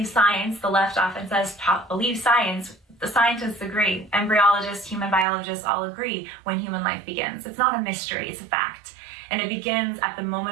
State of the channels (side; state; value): left; drops out; at 5.2 s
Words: science. The left often says, believe science. The scientists agree. Embryologists, human biologists all agree when human life begins. It's not a mystery, it's a fact. And it begins at the